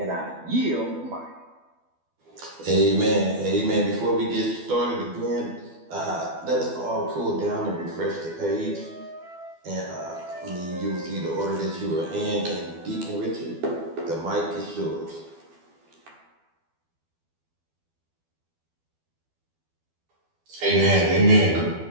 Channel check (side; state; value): left; late; 12 ms